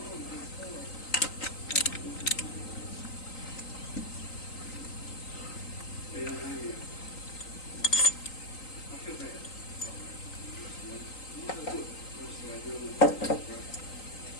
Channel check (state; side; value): late; right; 3.9 ms